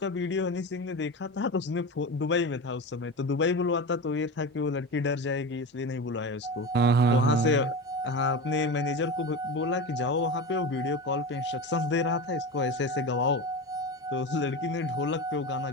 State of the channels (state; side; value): normal; both; correlation 0.25